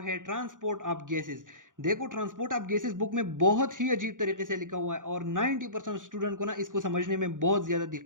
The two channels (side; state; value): left; late; 0.88 ms